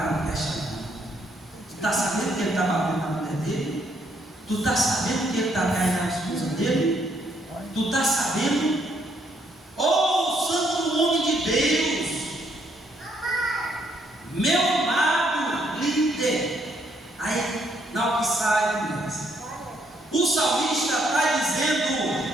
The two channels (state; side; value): normal; both; correlation 0.71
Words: não presta não. Tu está sabendo que ele está batendo na mulher dele? Tu está sabendo que ele está caindo na esposa dele? Tu está sabendo? Oh, santo homem de Deus, meu amado líder. Aí, na hora que sai, começa. O salmista está dizendo